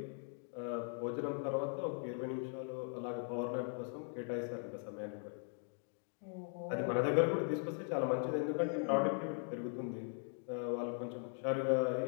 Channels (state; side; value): silent; right; 51 dB below the other